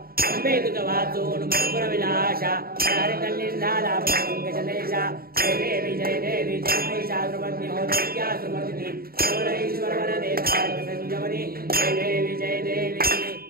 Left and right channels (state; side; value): late; left; 0.43 ms